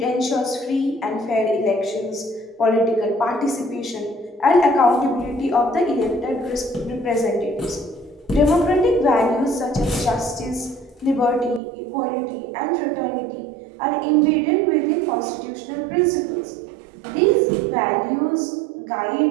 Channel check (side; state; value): left; drops out; at 11.6 s